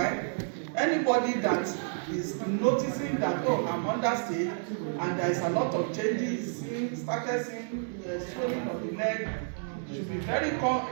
anybody that is noticing that, oh, I'm understate and there's a lot of changes, started seeing swelling of the leg, should be very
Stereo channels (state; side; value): silent; left; 58 dB below the other